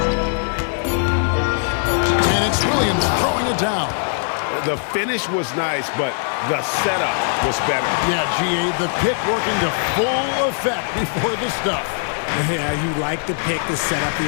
And it's Williams throwing it down. The finish was nice, but the setup was better. Yeah, GA, the pick working to full effect before the stuff. Yeah, you like the pick to set up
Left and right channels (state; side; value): silent; right; 57 dB below the other